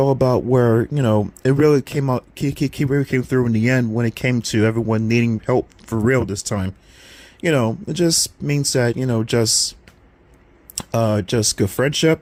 about where, it really came out, he really came through in the end when it came to everyone needing help for real this time. It just means that, just good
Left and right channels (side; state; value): both; identical; correlation 1.00